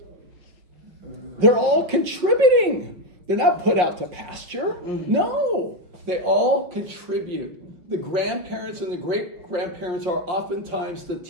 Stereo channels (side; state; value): left; late; 5.6 ms